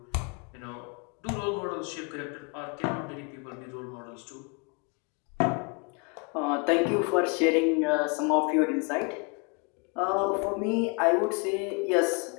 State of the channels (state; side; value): quieter; right; 33.4 dB